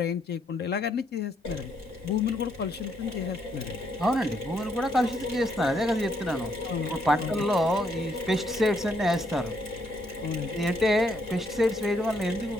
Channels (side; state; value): both; normal; correlation 0.73